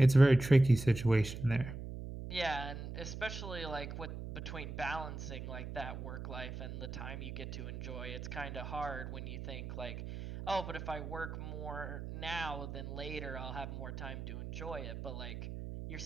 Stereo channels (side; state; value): right; noise; hum, 8 dB below the sound